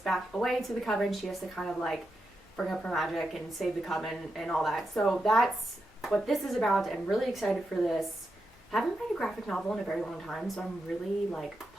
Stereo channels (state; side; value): normal; both; correlation 0.87